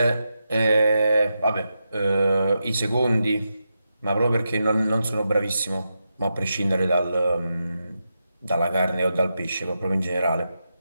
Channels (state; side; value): inverted; both; correlation -0.87